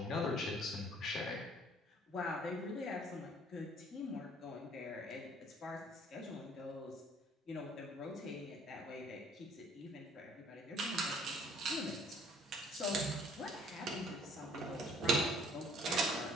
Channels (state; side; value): normal; both; correlation 0.58